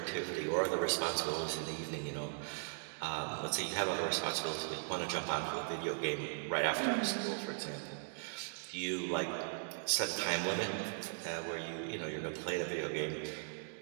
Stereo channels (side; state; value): left; silent; digital silence